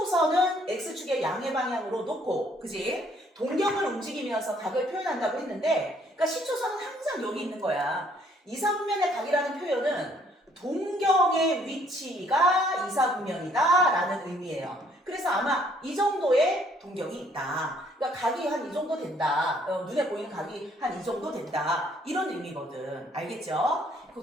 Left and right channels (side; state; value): both; normal; correlation 0.64